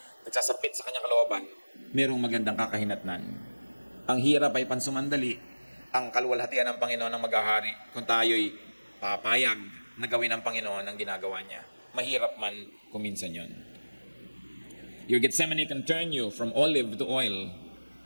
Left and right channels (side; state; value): both; inverted; correlation -1.00